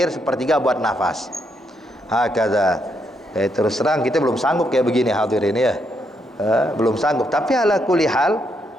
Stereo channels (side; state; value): both; normal; correlation 0.77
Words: 1/3 buat nafas. Hakadha. Terus terang kita belum sanggup kayak begini hadirin ya. Belum sanggup. Tapi ala kulli hal,